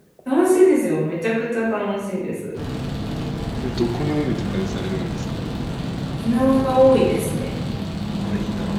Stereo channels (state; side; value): identical; both; correlation 1.00